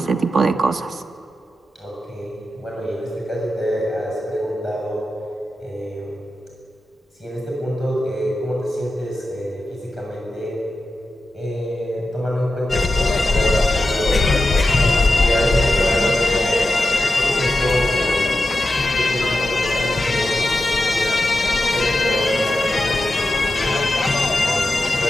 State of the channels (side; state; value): both; normal; correlation 0.91